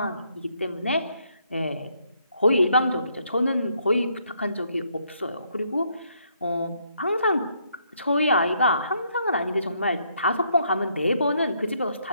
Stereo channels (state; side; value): inverted; both; correlation -0.72